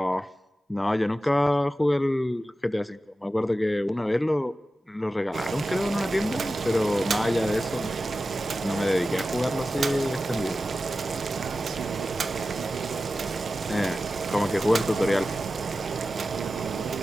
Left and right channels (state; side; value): normal; both; correlation 0.94